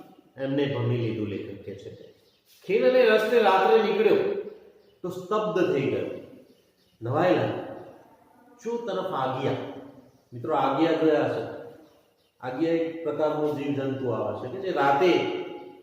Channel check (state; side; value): identical; both; correlation 1.00